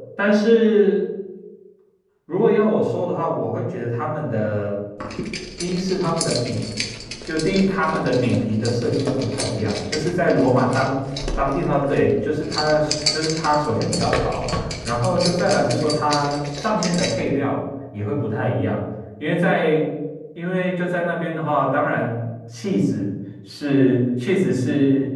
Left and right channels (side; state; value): both; identical; correlation 1.00